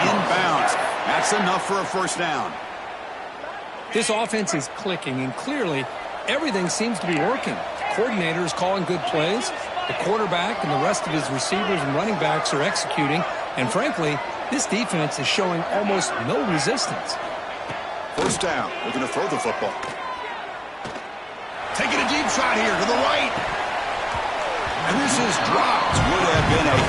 in bounds. That's enough for a first down. This offense is clicking, and clearly everything seems to be working. The coordinator is calling good plays. The quarterback and the rest of his receivers and running backs are executing. And frankly, this defense is showing almost no resistance. First down. Looking to throw the football. Taking a deep shot here to the right. And this is dropped. Would have been a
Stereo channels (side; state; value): both; identical; correlation 1.00